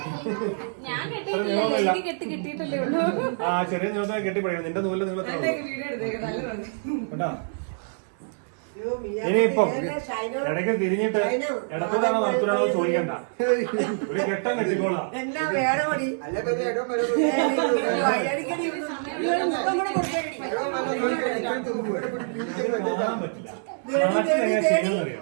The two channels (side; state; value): left; silent; digital silence